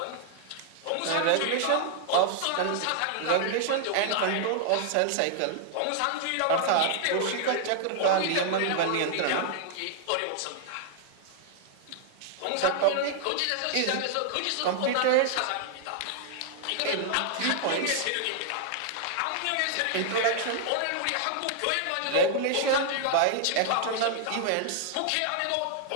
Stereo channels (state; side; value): different; both; correlation -0.01